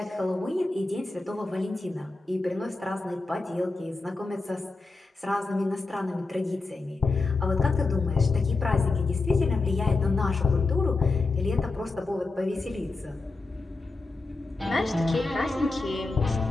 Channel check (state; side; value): quieter; right; 3.5 dB